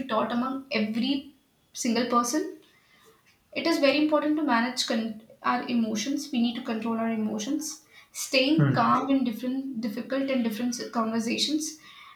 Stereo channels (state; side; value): identical; both; correlation 1.00